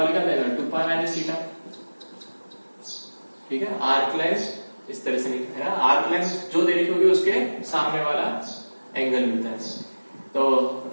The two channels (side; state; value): both; inverted; correlation -1.00